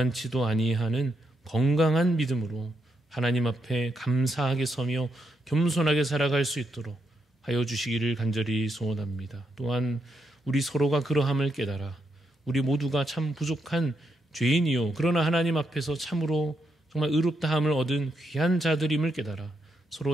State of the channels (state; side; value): normal; both; correlation 0.81